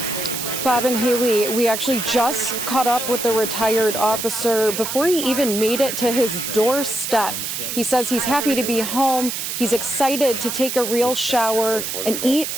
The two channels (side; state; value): right; noise; hiss, 4 dB below the sound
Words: Bob and Haley, we actually just caught up with the retired officer before he even made it to his doorstep. He says he's happy to be home. He's excited to take a real shower and eat